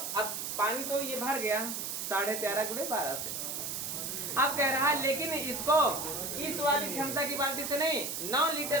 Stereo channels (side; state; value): right; noise; hiss, 4 dB below the sound